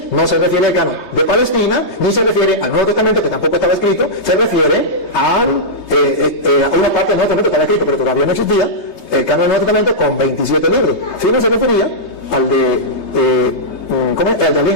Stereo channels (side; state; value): right; late; 3.3 ms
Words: no se refiere al canon de Palestina, ni se refiere al Nuevo Testamento, que tampoco estaba escrito, se refiere a una parte del Nuevo Testamento que estaba escrito, pero todavía no existía, el canon del Nuevo Testamento con 27 libros. Si no se refería al de